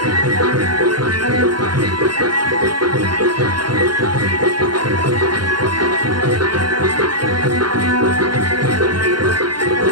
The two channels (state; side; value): late; left; 0.71 ms